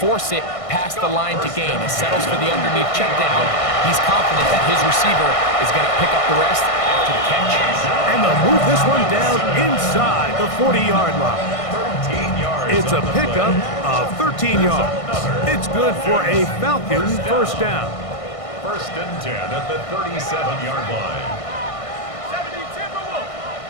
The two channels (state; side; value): late; right; 1.6 ms